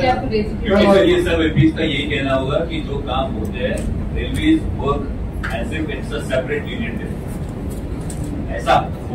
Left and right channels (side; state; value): both; identical; correlation 1.00